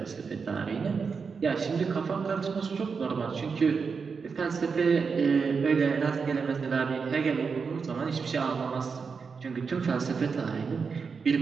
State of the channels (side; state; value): left; quieter; 5.4 dB